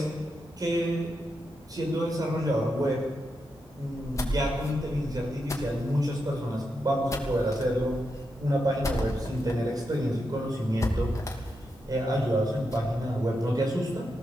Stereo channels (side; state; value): both; normal; correlation 0.85